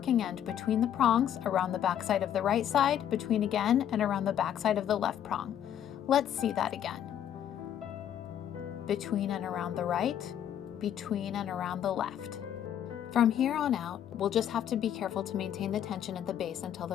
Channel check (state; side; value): quieter; right; 10.1 dB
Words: end between the prongs, around the back side of the right side, between again, and around the back side of the left prong. Let's see that again. Between and around the right, between and around the left. From here on out, we'll just have to be careful to maintain the tension at the base until